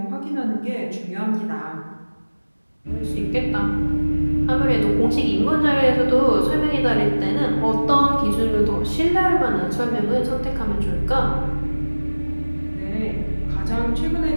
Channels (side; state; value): both; inverted; correlation -1.00